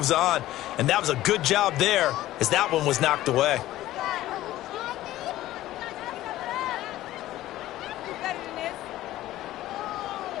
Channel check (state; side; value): quieter; right; 15.1 dB